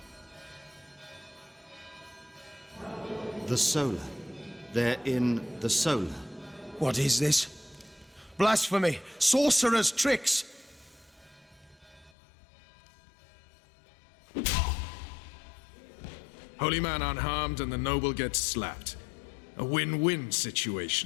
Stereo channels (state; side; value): drops out; right; at 12.1 s